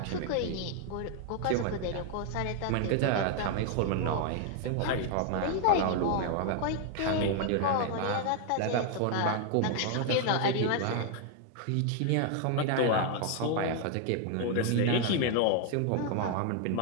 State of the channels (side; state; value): both; different; correlation 0.00